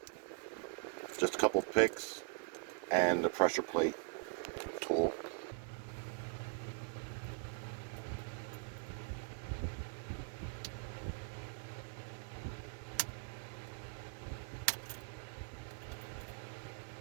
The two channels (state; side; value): quieter; left; 34.5 dB